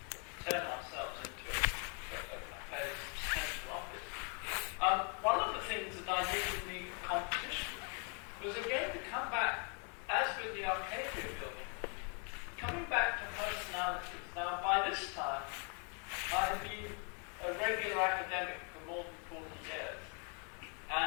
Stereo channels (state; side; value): quieter; right; 37.5 dB